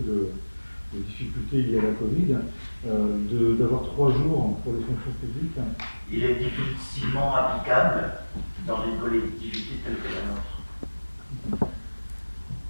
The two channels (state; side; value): inverted; both; correlation -1.00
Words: de difficultés liées à la Covid, d'avoir 3 jours pour les fonctions publiques? Il est difficilement applicable dans une collectivité telle que la nôtre.